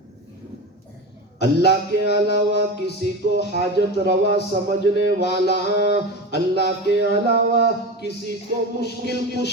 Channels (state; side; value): normal; both; correlation 0.26